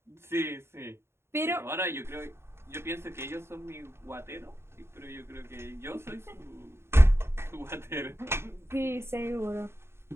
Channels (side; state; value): left; late; 0.12 ms